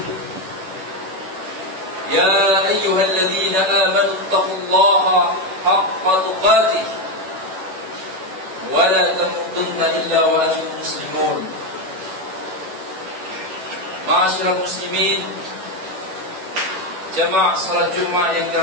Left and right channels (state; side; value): late; left; 11 ms